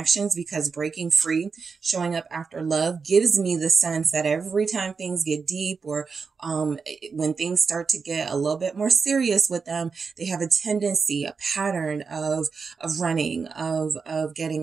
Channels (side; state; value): left; quieter; 5.2 dB